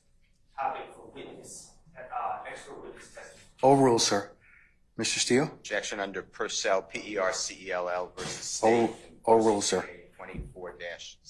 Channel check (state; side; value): identical; both; correlation 1.00